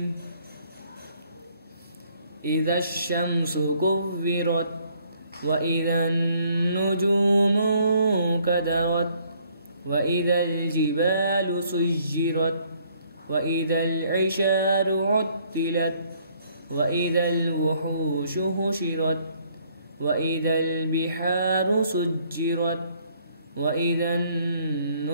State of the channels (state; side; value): inverted; both; correlation -0.65